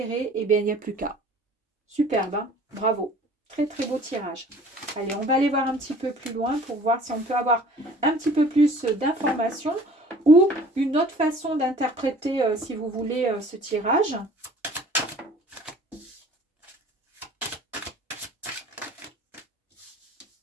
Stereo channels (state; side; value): normal; both; correlation 0.49